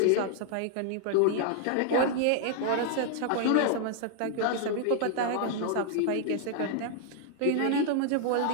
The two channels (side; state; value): both; different; correlation 0.00